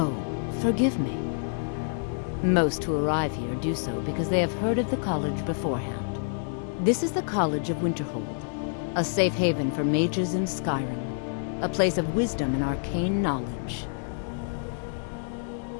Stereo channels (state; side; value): silent; right; 60 dB below the other